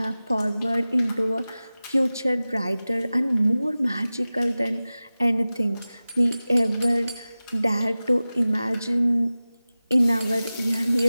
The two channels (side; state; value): both; inverted; correlation -0.97